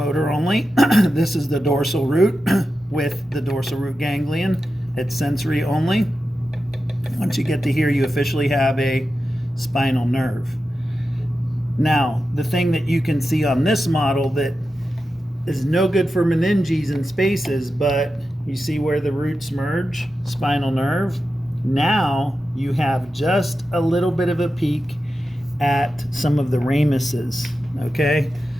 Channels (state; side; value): normal; both; correlation 0.91